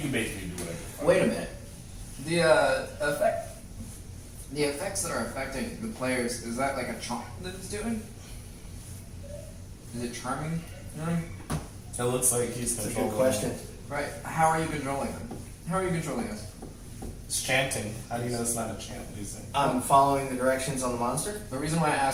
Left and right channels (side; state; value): both; identical; correlation 1.00